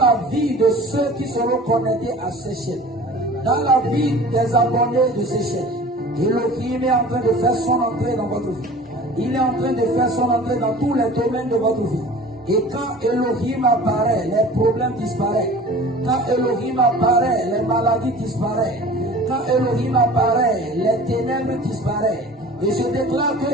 vie de ceux qui seront connectés à ces chaînes. Dans la vie des abonnés de ces chaînes. Elohim est en train de faire son entrée dans votre vie. Il est en train de faire son entrée dans tous les domaines de votre vie. Et quand Elohim apparaît, les problèmes disparaissent. Quand Elohim apparaît, les maladies disparaissent. Quand Elohim apparaît, les ténèbres disparaissent. Et je déclare que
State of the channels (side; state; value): both; normal; correlation 0.42